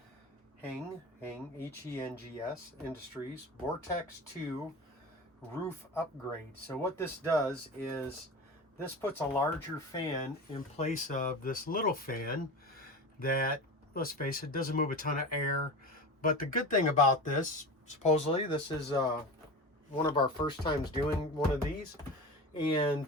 H-E-N-G-S Industries Vortex 2 roof upgrade. So what this does is this puts a larger fan in place of this little fan that, let's face it, doesn't move a ton of air. But the good thing about this, supposedly this is one of our first times doing one of these,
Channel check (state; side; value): normal; both; correlation 0.29